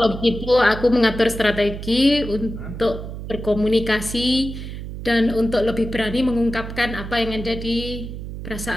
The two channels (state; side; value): noise; right; hum, 9 dB below the sound